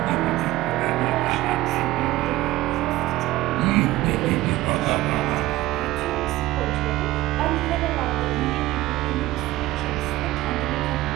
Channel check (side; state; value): left; quieter; 17.0 dB